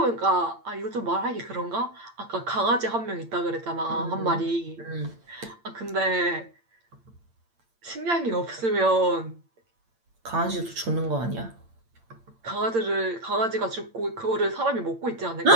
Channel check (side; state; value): left; late; 8.8 ms